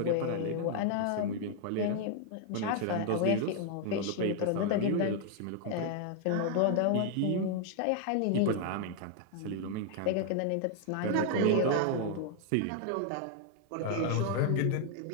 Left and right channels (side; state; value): both; different; correlation 0.00